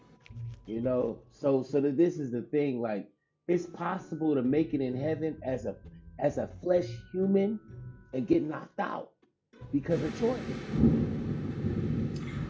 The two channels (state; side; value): identical; both; correlation 1.00